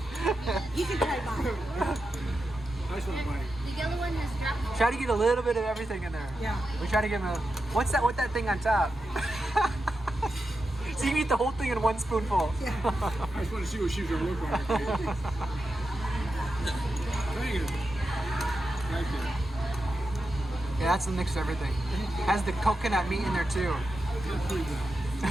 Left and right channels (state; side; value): normal; both; correlation 0.89